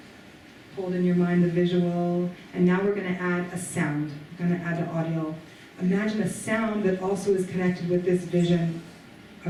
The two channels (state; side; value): identical; both; correlation 1.00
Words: Hold in your mind the visual. And now we're going to add a sound. We're going to add the audio. Imagine a sound that also is connected with this vision